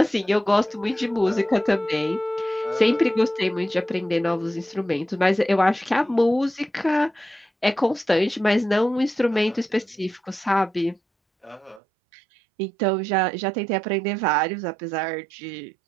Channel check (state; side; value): drops out; left; at 11.8 s